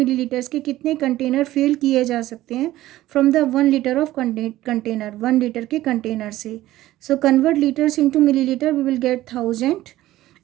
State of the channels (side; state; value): left; quieter; 15.4 dB